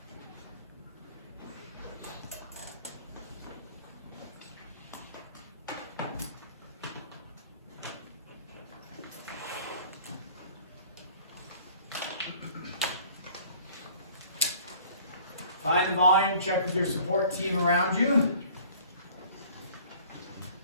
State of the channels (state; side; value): inverted; both; correlation -0.51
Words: Find the volume, check with your support team around you.